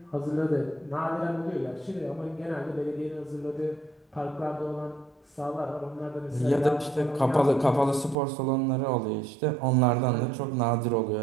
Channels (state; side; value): drops out; left; at 8.2 s